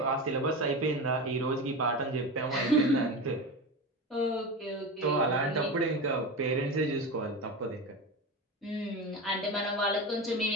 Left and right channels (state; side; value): normal; both; correlation 0.23